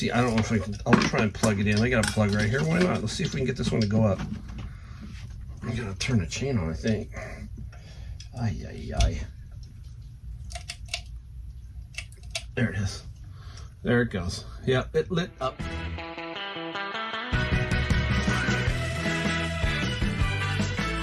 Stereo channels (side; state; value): both; identical; correlation 1.00